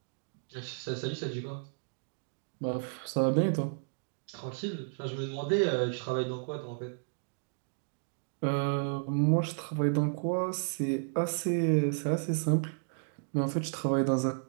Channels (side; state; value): left; silent; digital silence